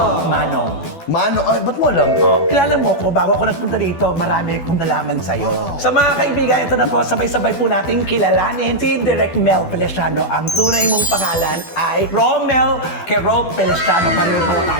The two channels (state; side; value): late; right; 12 ms